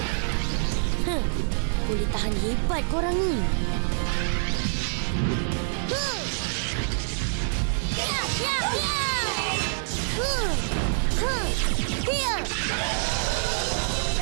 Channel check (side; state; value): left; silent; digital silence